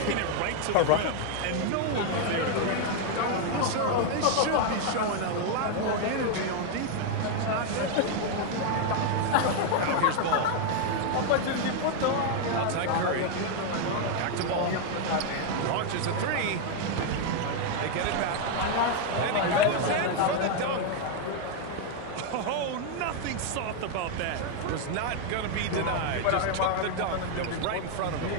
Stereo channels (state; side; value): different; both; correlation 0.00